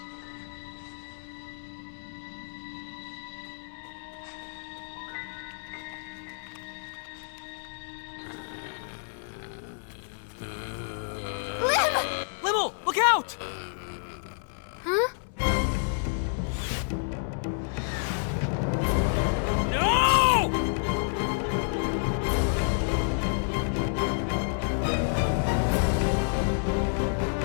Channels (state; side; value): silent; right; digital silence